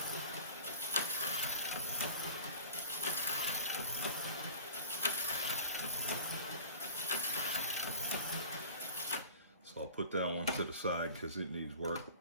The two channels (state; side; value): inverted; both; correlation -0.41